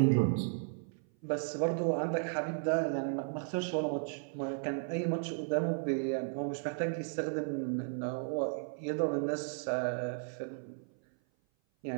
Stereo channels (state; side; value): silent; left; 55 dB below the other